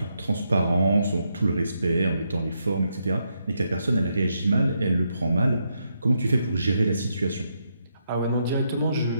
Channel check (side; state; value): both; inverted; correlation -0.80